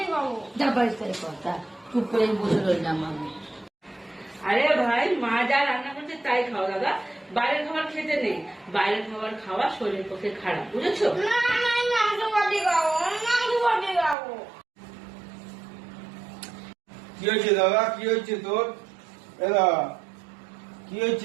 খাবো। যা বাড়ির থেকে কথা চুপ করে বসে রইলাম আমি। আরে ভাই, মা যা রান্না করছে তাই খাও দাদা। বাইরের খাবার খেতে নেই, বাইরের খাবার খাওয়া শরীরের পক্ষে খারাপ, বুঝেছো? না আমি মাংস ভাতই খাবো, আমি মাংস ভাতই খাবো। কি হয়েছে দাদা? কি হয়েছে তোর? এরা কি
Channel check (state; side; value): drops out; left; at 14.2 s